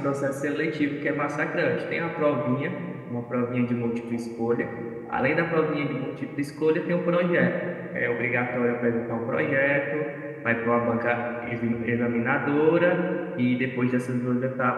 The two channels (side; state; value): both; identical; correlation 1.00